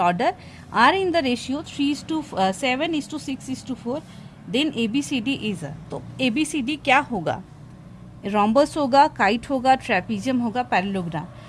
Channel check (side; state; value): both; identical; correlation 1.00